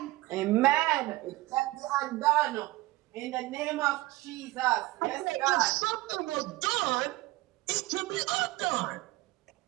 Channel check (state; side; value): quieter; left; 19.3 dB